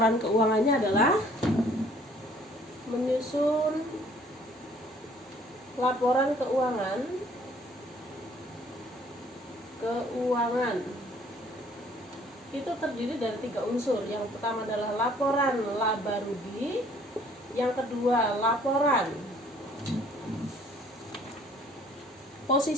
keuangannya adalah menyusun laporan keuangan itu terdiri dari 3 unsur. Yang pertama adalah laporan laba rugi, yang kedua laporan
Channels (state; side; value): normal; both; correlation 0.58